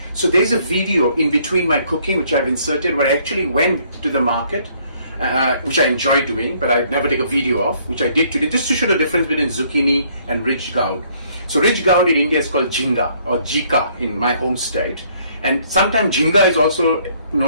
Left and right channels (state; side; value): inverted; both; correlation -0.64